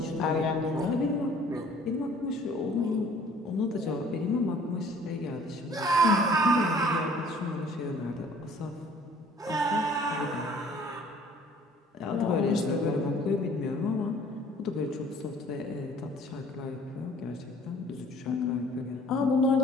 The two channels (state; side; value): normal; both; correlation 0.54